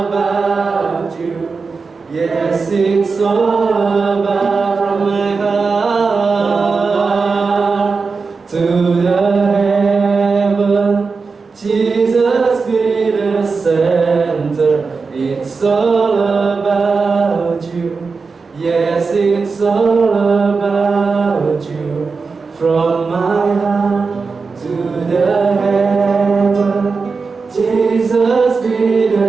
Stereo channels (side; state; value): left; quieter; 4.6 dB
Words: you. Yes, it's all about from my heart to the heaven. Jesus be the center. It's all about you. Yes, it's all about you. From my heart to the heaven. Jesus be